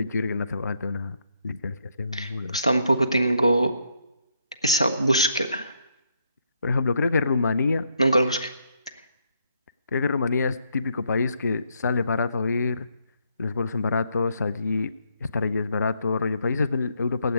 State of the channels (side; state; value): both; inverted; correlation -0.75